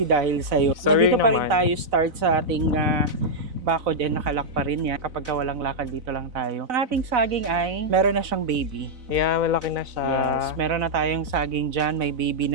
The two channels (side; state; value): left; late; 4.0 ms